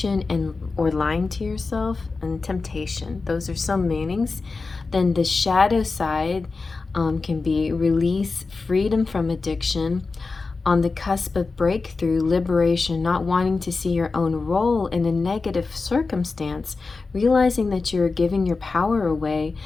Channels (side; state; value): right; quieter; 4.1 dB